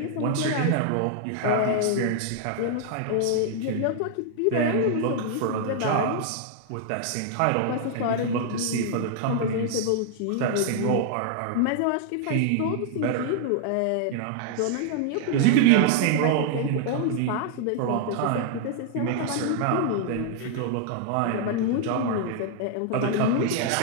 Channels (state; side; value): different; both; correlation 0.00